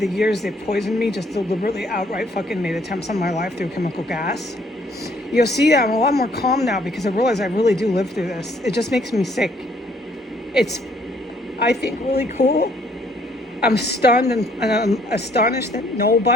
years, they poisoned me, just deliberately outright fucking made attempts on my life through chemical gas. You'll see that I'm a lot more calm now because I realize I really do live through this. It just makes me sick. It's, I think, really cool. I'm stunned and I'm astonished that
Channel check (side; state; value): both; normal; correlation 0.64